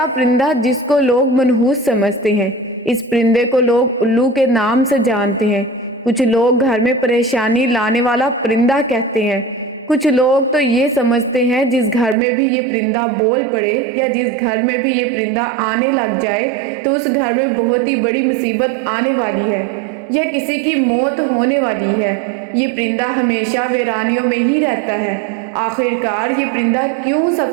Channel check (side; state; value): left; drops out; at 12.2 s